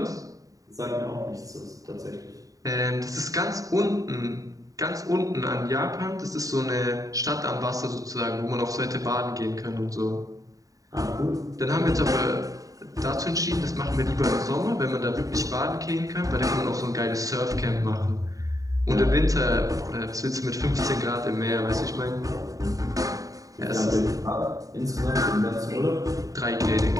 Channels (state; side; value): late; left; 0.16 ms